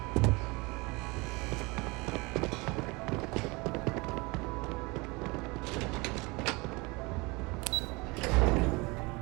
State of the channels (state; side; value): quieter; left; 25.7 dB